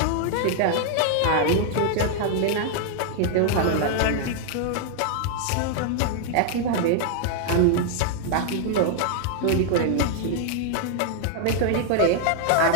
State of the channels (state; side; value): different; both; correlation 0.00